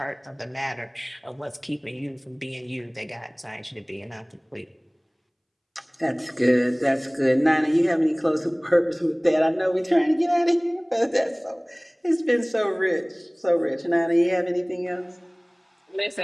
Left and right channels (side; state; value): both; identical; correlation 1.00